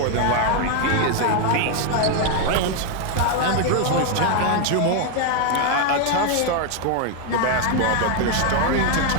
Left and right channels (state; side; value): different; both; correlation 0.01